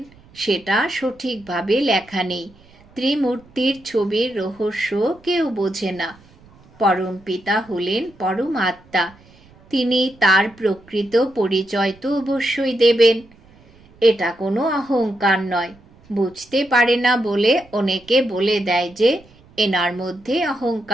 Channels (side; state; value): right; noise; rumble, 27 dB below the sound